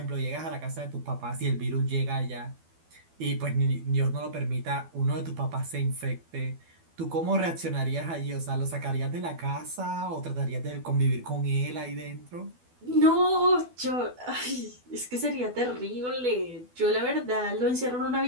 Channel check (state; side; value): late; left; 12 ms